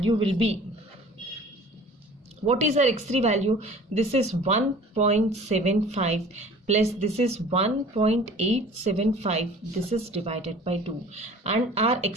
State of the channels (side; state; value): both; normal; correlation 0.46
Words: will be, what is our x3 value? This is 1.75 plus this is 1.875, this is divided by 2, and our